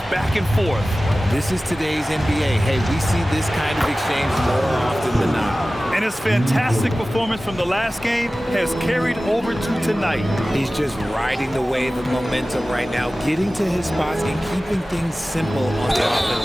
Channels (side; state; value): both; normal; correlation 0.96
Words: back and forth. This is today's NBA. Hey, we see this kind of exchange more often than not. And his fantastic performance from the last game has carried over to tonight. He's just riding the wave of momentum right now, getting to his spots and keeping things simple on the